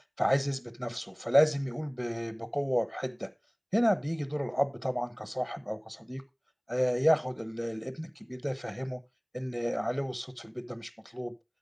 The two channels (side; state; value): both; identical; correlation 1.00